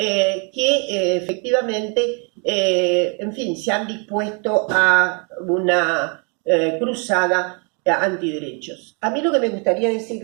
efectivamente, en fin, se han dispuesto a una cruzada antiderechos. A mí lo que me gustaría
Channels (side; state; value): left; quieter; 35.5 dB